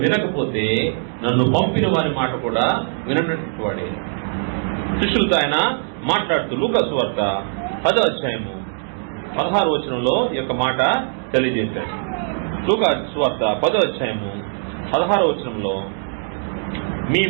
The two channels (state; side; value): silent; left; 65 dB below the other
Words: వినకపోతే నన్ను పంపిన వారి మాట కూడా వినటువంటి వాడే. శిష్యులతో ఆయన మాట్లాడుతూ లూకా సువార్త 10వ అధ్యాయము 16వ వచనంలో ఈ యొక్క మాట తెలియజేశాడు. లూకా సువార్త 10వ అధ్యాయము 16వ వచనంలో, మీ